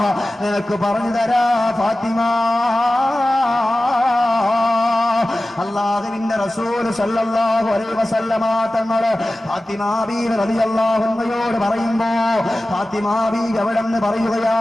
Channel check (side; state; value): both; normal; correlation 0.96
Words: നിനക്ക് പറഞ്ഞു തരാ ഫാത്തിമ. അല്ലാഹുവിന്റെ റസൂൽ സല്ലല്ലാഹു അലൈഹി വസല്ലമ തങ്ങള് ഫാത്തിമ ബീവി റളിയല്ലാഹു അൻഹയോട് പറയുമ്പോ ഫാത്തിമ ബീവി അവിടെന്ന്